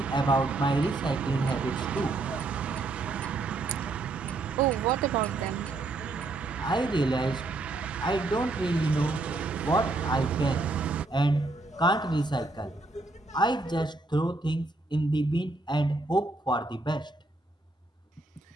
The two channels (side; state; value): left; quieter; 3.1 dB